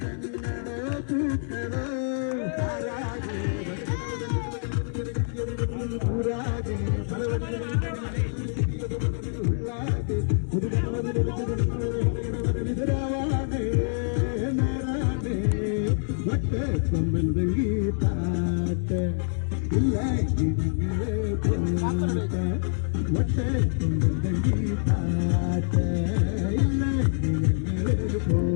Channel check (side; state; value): right; silent; 61 dB below the other